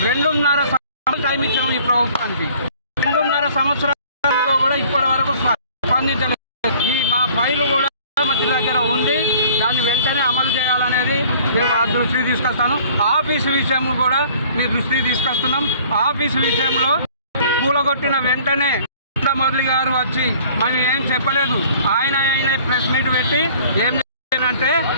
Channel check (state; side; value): inverted; both; correlation -0.52